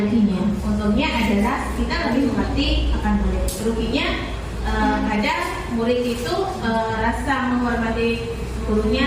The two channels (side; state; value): both; identical; correlation 1.00